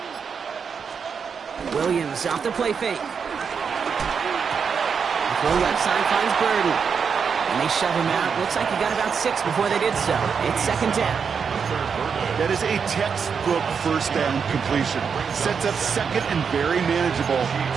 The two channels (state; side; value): quieter; left; 6.3 dB